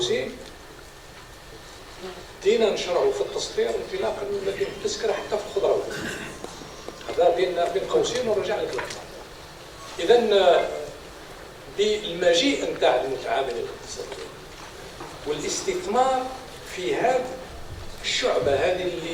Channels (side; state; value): both; identical; correlation 1.00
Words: دينا نشرعوا في التصدير انطلاقا من مدينة تسكرة حتى في الخضروات. هذا بين قوسين ونرجع لك الأكثر. إذا بالمجيء نتاع المتعاملين الاقتصاديين والاستثمار في هذه الشعبة هذه